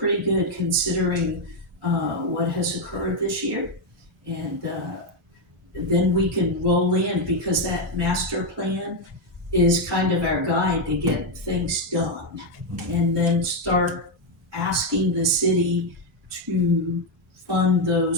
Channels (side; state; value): both; normal; correlation 0.03